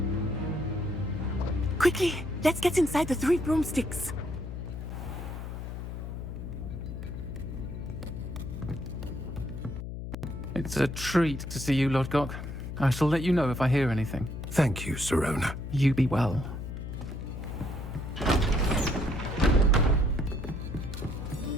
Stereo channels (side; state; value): left; noise; hum, 7 dB below the sound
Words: Quickly, let's get inside the Three Broomsticks. It's a treat to see you, Lodgok. I shall let you know if I hear anything. Thank you, Serona. You be well.